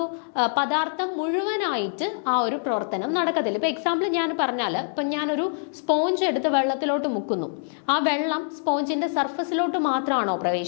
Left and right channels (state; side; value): silent; right; digital silence